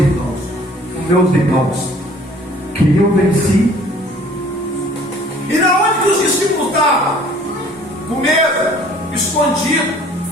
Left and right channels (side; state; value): both; normal; correlation 0.53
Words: os meus irmãos, que eu venci. E na onde que os discípulos estavam? Com medo, escondido,